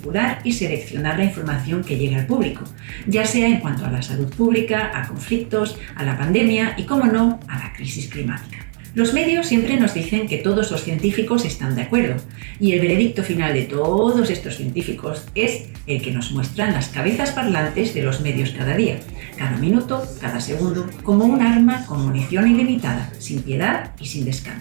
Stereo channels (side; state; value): left; quieter; 35.0 dB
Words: y seleccionar la información que llega al público, ya sea en cuanto a la salud pública, a conflictos, a la pandemia y, cómo no, a la crisis climática. Los medios siempre nos dicen que todos los científicos están de acuerdo, y el veredicto final de todos estos científicos es el que nos muestran las cabezas parlantes de los medios cada día, cada minuto, cada segundo, como un arma con munición ilimitada, sin piedad y sin